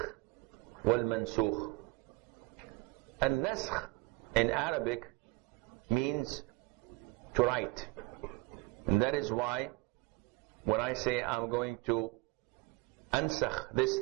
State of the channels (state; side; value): quieter; left; 24.2 dB